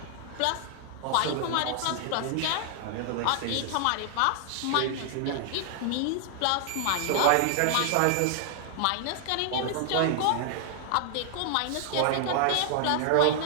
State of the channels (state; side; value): different; both; correlation 0.00